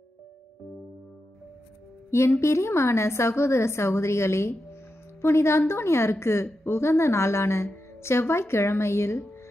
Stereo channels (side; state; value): both; normal; correlation 0.89